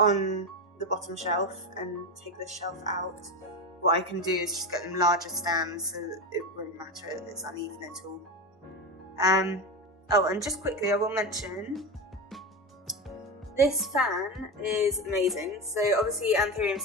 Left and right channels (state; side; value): normal; both; correlation 0.19